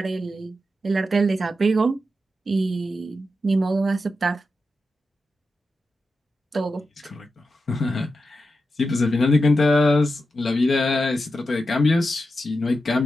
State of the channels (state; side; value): normal; both; correlation 0.89